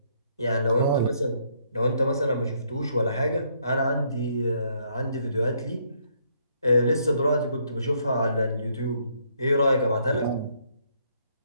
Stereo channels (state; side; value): inverted; both; correlation -0.70